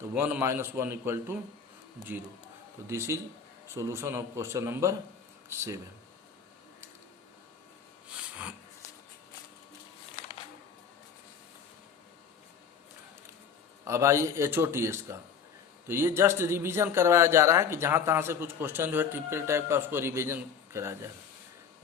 1 - 1 इक्वल टू 0। तो this is solution of question number 7। अब आइए HOTS का, तो ये जस्ट रिवीजन करवाया जा रहा है कि जहां तहां से कुछ क्वेश्चन जो है टिपिकल टाइप का उसको रिवीजन कराया जाएगा।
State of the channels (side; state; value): right; quieter; 6.7 dB